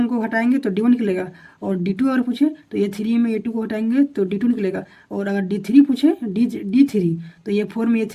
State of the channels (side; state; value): both; identical; correlation 1.00